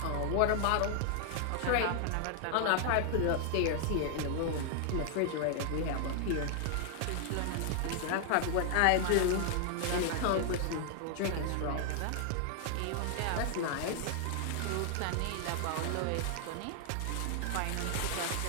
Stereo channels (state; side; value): different; both; correlation 0.00